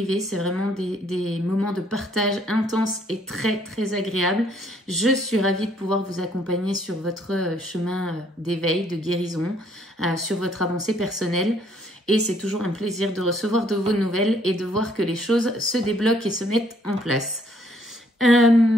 C'est vraiment des moments de partage intenses et très agréables. Je suis ravie de pouvoir vous accompagner sur votre chemin d'éveil, de guérison, sur votre avancée personnelle. Et c'est toujours un plaisir de recevoir de vos nouvelles et de voir que les choses se débloquent et se mettent en place.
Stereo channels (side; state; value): both; normal; correlation 0.65